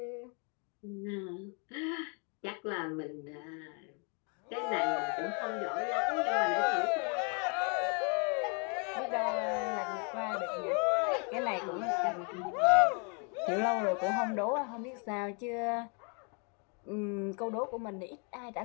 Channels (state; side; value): quieter; right; 36.7 dB